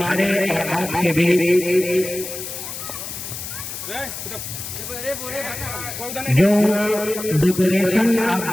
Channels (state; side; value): noise; left; hiss, 8 dB below the sound